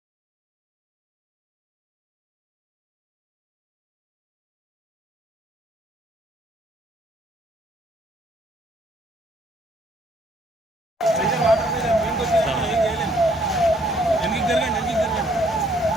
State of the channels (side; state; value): both; normal; correlation 0.65